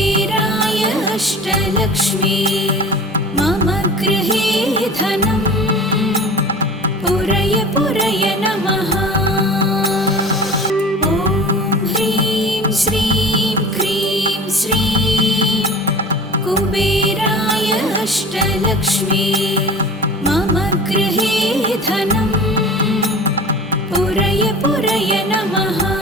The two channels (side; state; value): both; normal; correlation 0.39